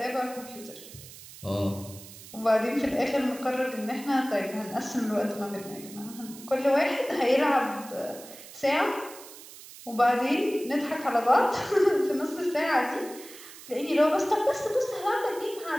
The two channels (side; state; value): right; noise; hiss, 17 dB below the sound